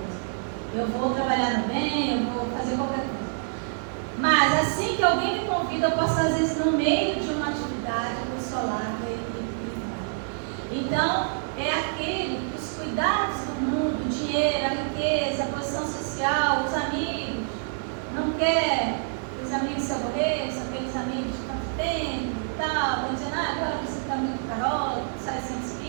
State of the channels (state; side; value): silent; left; digital silence